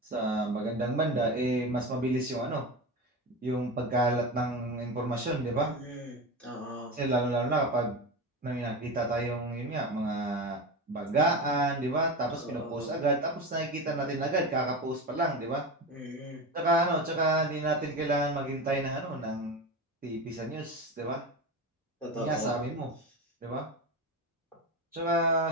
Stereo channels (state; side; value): normal; both; correlation 0.23